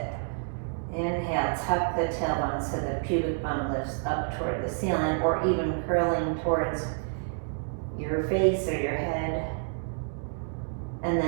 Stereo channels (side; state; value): left; silent; digital silence